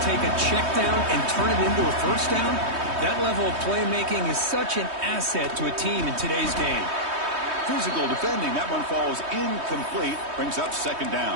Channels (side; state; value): left; late; 3.2 ms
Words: take a check down and turn it into a first down. That level of playmaking is such an asset to a team in today's game. Physical defending. That one falls incomplete. Brings up 2nd